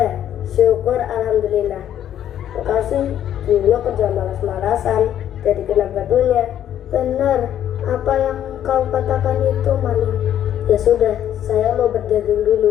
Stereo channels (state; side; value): quieter; right; 10.7 dB